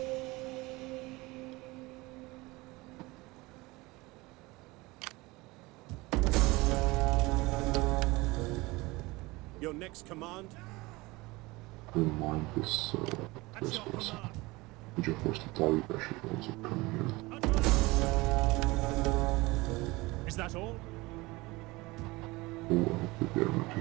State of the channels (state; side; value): quieter; left; 22.2 dB